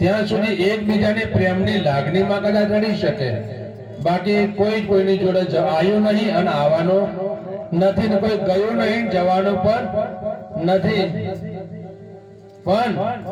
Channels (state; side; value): identical; both; correlation 1.00